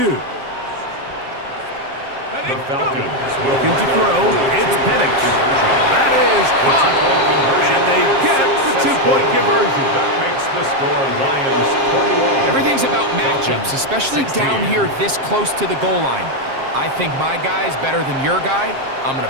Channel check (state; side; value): late; left; 7.5 ms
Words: The Falcons will looking to throw. It's Penix. That is caught. And they get the two-point conversion. That makes the score Lions 21. Everything's about matchups, especially down here this close to the goal line. I think my guy's better than your guy. I'm going